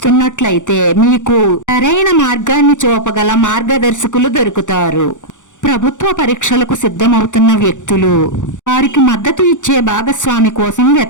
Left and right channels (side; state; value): right; late; 0.86 ms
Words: మీకు సరైన మార్గాన్ని చూపగల మార్గదర్శకులు దొరుకుతారు. ప్రభుత్వ పరీక్షలకు సిద్ధమవుతున్న వ్యక్తులు వారికి మద్దతు ఇచ్చే భాగస్వామి కోసం